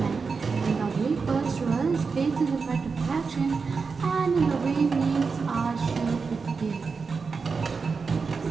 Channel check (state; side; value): quieter; left; 4.9 dB